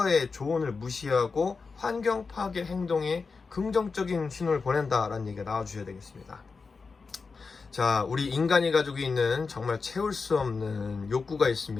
조언을 무시하고 환경 파괴 행동에 긍정적인 신호를 보낸다라는 얘기가 나와주셔야 되겠습니다. 자, 우리 인간이 가지고 있는 정말 채울 수 없는 욕구가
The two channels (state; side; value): quieter; right; 4.6 dB